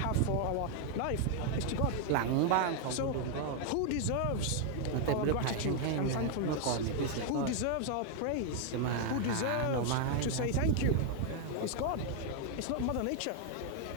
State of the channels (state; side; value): different; both; correlation 0.00